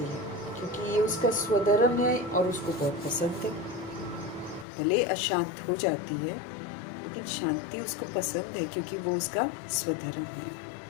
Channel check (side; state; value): right; drops out; at 4.7 s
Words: है, क्योंकि ये उसका स्वधर्म है और उसको बहुत पसंद है। भले अशांत हो जाती है, लेकिन शांति उसको पसंद है, क्योंकि वो उसका स्वधर्म है,